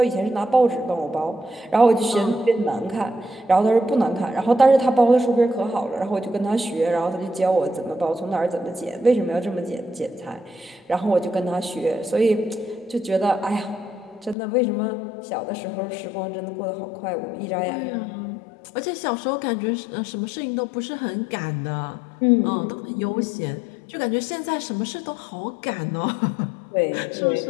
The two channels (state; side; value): drops out; right; at 14.4 s